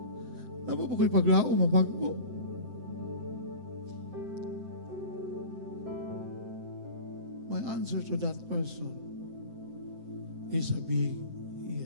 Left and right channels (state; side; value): late; left; 7.7 ms